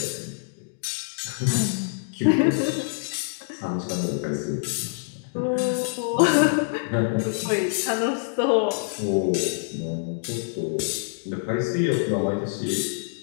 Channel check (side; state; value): right; silent; digital silence